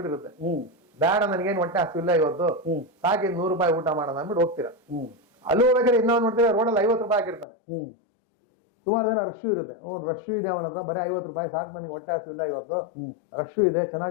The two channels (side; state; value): right; drops out; at 7.5 s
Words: ಬೇಡ ನನಗೇನು ಹೊಟ್ಟೆ ಹಸಿವಿಲ್ಲ ಇವತ್ತು, ಸಾಕಿ 100 ರೂಪಾಯಿ ಊಟ ಮಾಡೋಣ ಅಂದ್ಬಿಟ್ಟು ಹೋಗ್ತೀರಾ. ಅಲ್ಲಿ ಹೋಗ್ಬೇಕಾದ್ರೆ ಇನ್ನೊಂದು ನೋಡ್ತೀರಾ ರೋಡಲ್ಲಿ 50 ರೂಪಾಯಿ ಹಾಕಿರ್ತಾನೆ. ಸುಮಾರು ಜನ ರಶ್ ಇರುತ್ತೆ, ರಶ್ ಇದೆ ಅವನ ಹತ್ರ, ಬರೀ 50 ರೂಪಾಯಿ ಸಾಕು, ನನಗೆ ಹೊಟ್ಟೆ ಹಸಿವಿಲ್ಲ ಇವತ್ತು, ರಶ್ ಇದೆ